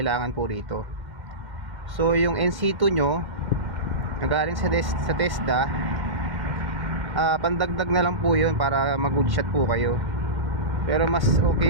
po rito. So yung NC2 nyo nagaling sa TESDA, pandagdag na lang po yun para mag-good shot po kayo. Pero mas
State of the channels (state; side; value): late; left; 2.1 ms